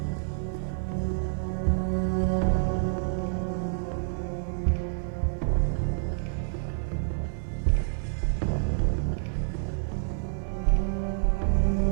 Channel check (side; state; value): left; silent; 56 dB below the other